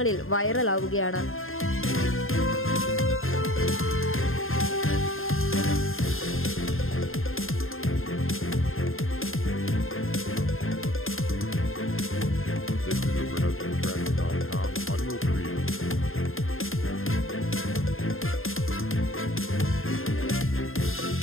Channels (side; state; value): right; late; 0.60 ms